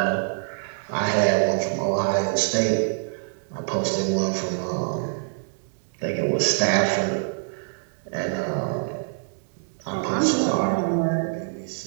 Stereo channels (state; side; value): silent; left; 61 dB below the other